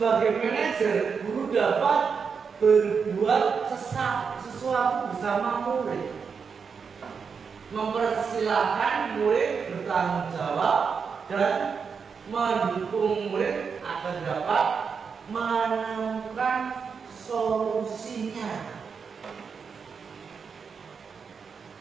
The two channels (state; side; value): quieter; left; 5.9 dB